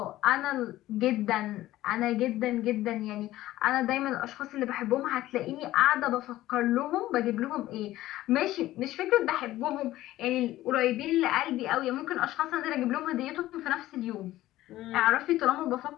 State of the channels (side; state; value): right; quieter; 15.4 dB